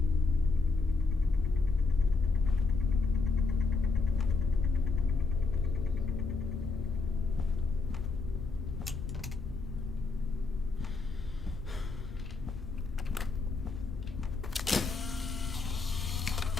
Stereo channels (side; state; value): right; quieter; 4.1 dB